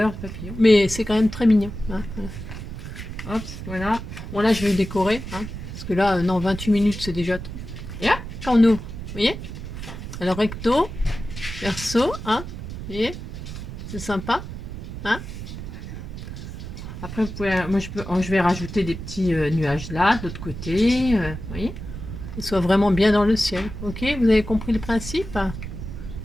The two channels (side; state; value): right; noise; rumble, 9 dB below the sound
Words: papillons. Mais c'est quand même très mignon. Hein, voilà. Hop, voilà. Bon là je vais décorer. Hein, parce que là, non, 28 minutes c'est déjà trop. Et là, quand on ouvre, vous voyez. Alors recto, verso, hein. Vous voyez. C'est sympa. Hein. Après, vous pouvez, moi je vais rajouter des petits nuages là, de l'autre côté. Vous voyez. Qu'ils soient vraiment bien dans le ciel. Ok, vous avez compris le principe?